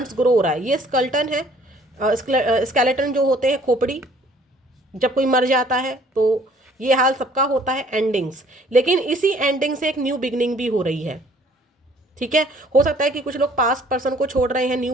ग्रो हो रहा है। ये स्कल्टन है, स्केलेटन जो होते हैं, खोपड़ी, जब कोई मर जाता है तो ये हाल सबका होता है, एंडिंग्स। लेकिन इसी एंडिंग से एक न्यू बिगनिंग भी हो रही है, ठीक है। हो सकता है कि कुछ लोग पास्ट पर्सन को छोड़ रहे हैं, न्यू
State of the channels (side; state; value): both; normal; correlation 0.57